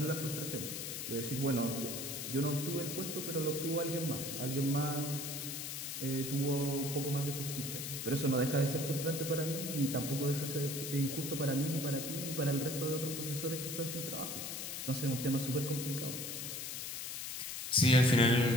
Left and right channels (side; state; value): left; noise; hiss, 5 dB below the sound